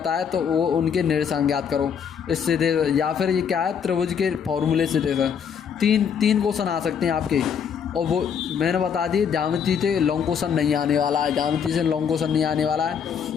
है तो वो उनके निर्देशांक ज्ञात करो इससे दे, या फिर ये क्या है त्रिभुज के फॉर्मूले से दे। तीन क्वेश्चन आ सकते हैं आपके, और वो मैंने बता दी ज्यामिति से लॉन्ग क्वेश्चन नहीं आने वाला है। ज्यामिति से लॉन्ग क्वेश्चन नहीं आने वाला है,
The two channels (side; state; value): right; quieter; 7.4 dB